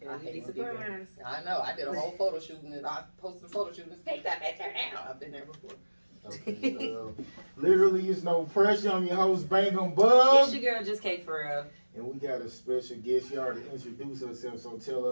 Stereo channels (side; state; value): both; inverted; correlation -1.00